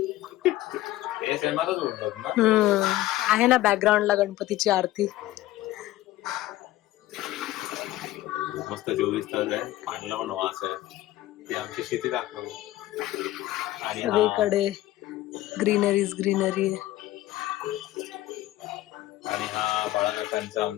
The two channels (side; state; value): right; quieter; 16.0 dB